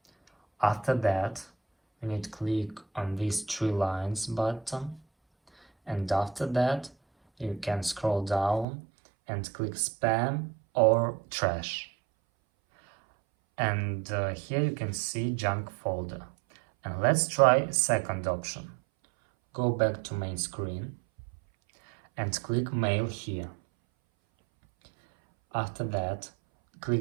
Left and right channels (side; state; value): left; drops out; at 8.7 s